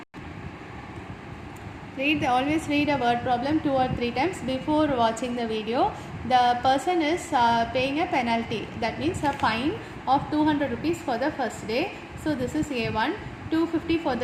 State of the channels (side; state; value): both; identical; correlation 1.00